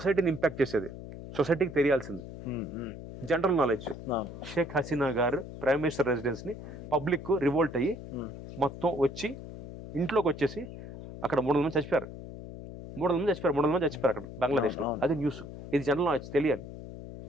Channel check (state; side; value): noise; left; hum, 12 dB below the sound